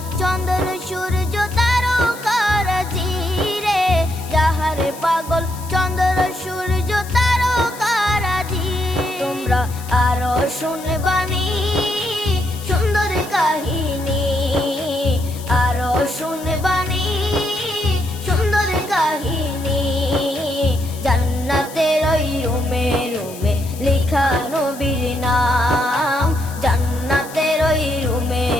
চন্দ্র সূর্য তারকারাজি রে। যাহার পাগল চন্দ্র সূর্য তারকারাজি। তোমরা আরো শুনে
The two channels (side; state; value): left; noise; hiss, 16 dB below the sound